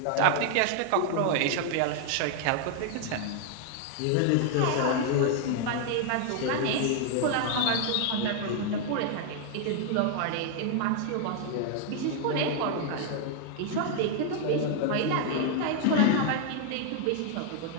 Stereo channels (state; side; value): different; both; correlation 0.00